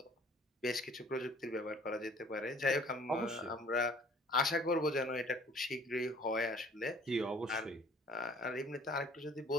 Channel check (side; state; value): both; normal; correlation 0.53